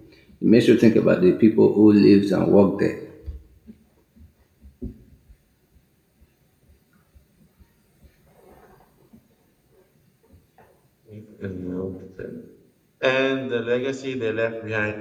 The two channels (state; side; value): identical; both; correlation 1.00